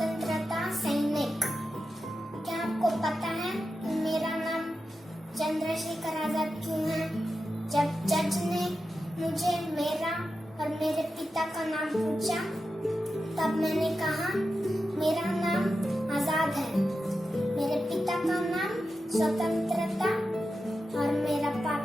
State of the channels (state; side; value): normal; both; correlation 0.90